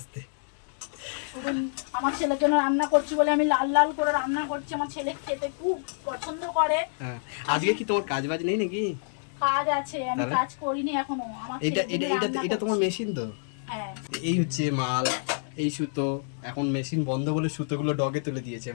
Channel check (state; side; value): silent; right; digital silence